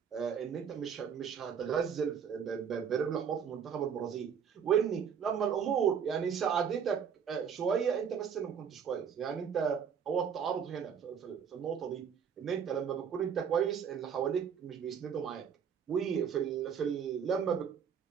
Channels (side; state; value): left; quieter; 7.4 dB